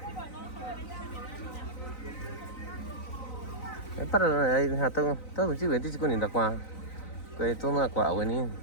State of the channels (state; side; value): late; right; 3.9 ms